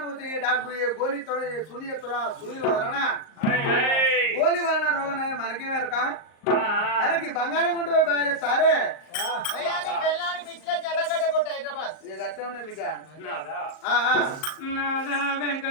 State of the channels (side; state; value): right; late; 38 ms